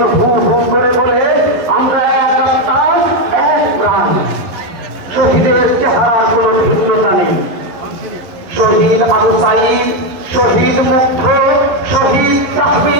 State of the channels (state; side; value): late; left; 11 ms